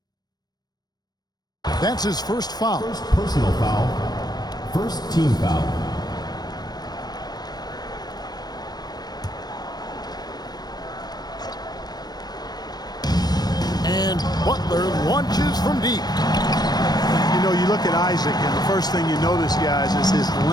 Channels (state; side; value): late; right; 0.19 ms